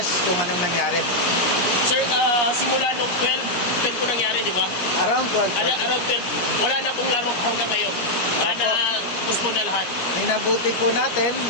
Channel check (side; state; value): right; late; 17 ms